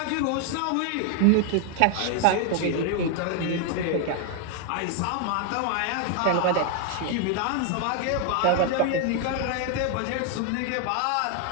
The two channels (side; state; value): both; different; correlation 0.00